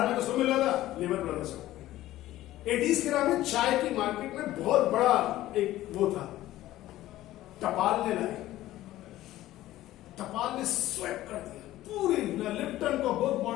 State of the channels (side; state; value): right; quieter; 15.1 dB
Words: में किसको मिल रहा था? लीवर ब्रदर्स को। 80s के में चाय की मार्केट में बहुत बड़ा एक वो था, टपाल ने लाई, टपाल ने स्वेप कर दिया पूरी लिप्टन को, बहुत